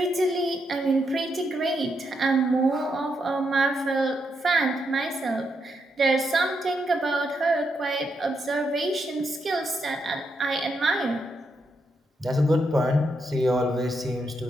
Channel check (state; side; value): normal; both; correlation 0.81